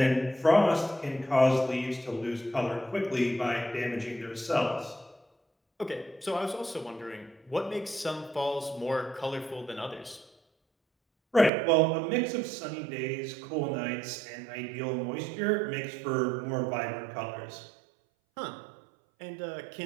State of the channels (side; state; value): left; drops out; at 11.5 s